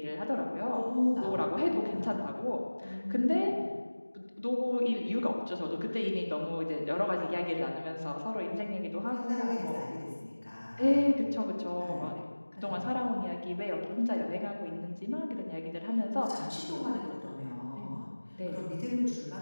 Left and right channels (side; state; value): both; inverted; correlation -1.00